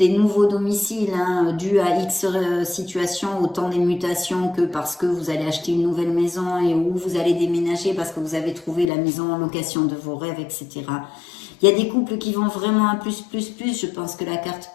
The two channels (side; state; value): right; drops out; at 8.8 s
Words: nouveaux domiciles hein, dus à X situations, autant des mutations que parce que vous allez acheter une nouvelle maison et où vous allez déménager parce que vous avez trouvé la maison en location de vos rêves, etc. Il y a des couples qui vont vraiment à plus, je pense que la carte